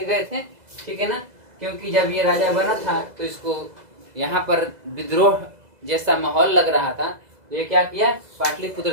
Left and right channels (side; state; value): left; late; 2.0 ms